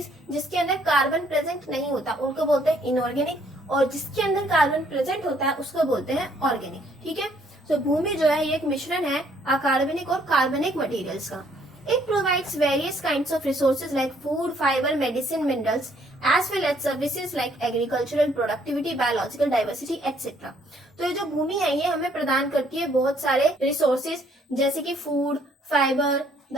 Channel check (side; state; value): both; normal; correlation 0.65